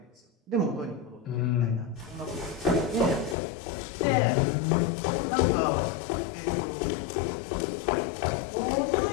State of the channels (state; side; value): drops out; right; at 3.4 s